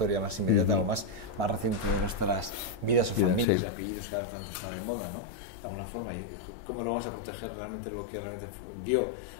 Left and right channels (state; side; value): drops out; right; at 3.5 s